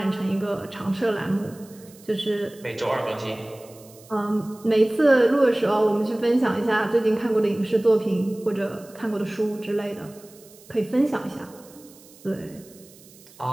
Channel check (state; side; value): noise; right; hiss, 24 dB below the sound